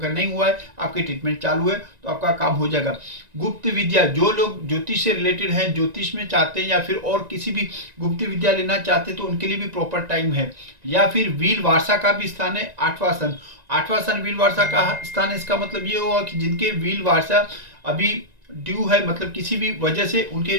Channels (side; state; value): left; late; 1.9 ms